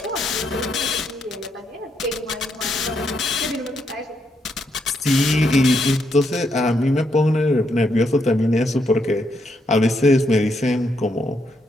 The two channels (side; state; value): both; normal; correlation 0.78